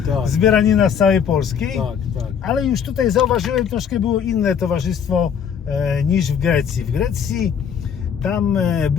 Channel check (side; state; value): right; quieter; 7.6 dB